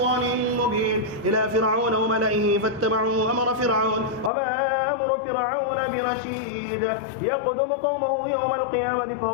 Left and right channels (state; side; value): drops out; right; at 4.3 s